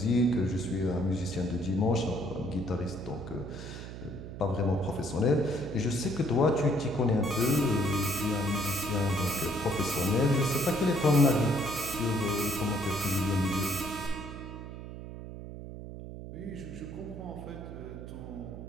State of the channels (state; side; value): noise; right; hum, 10 dB below the sound